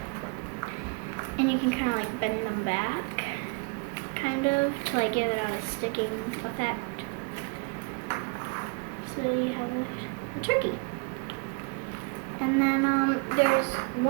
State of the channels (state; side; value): quieter; left; 30.9 dB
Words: And you can kind of like bend them back, kind of, to like give it out a sticking effect. So you have a turkey. And then there's